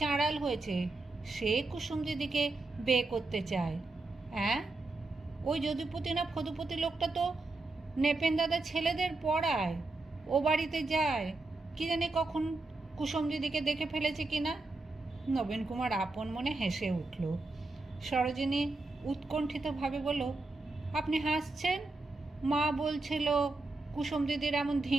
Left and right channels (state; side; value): quieter; left; 3.2 dB